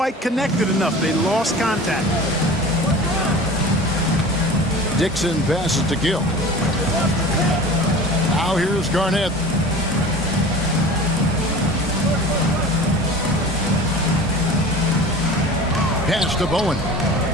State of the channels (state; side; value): normal; both; correlation 0.38